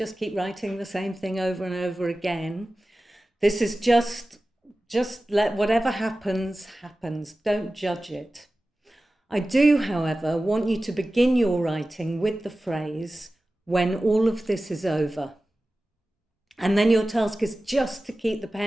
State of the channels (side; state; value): both; normal; correlation 0.96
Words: keep writing the same thing over and over again. This is just let whatever happens, happens. Don't judge it. I do, however, want you to begin your writing with the phrase, "when all of this is over." And then your task is just to keep the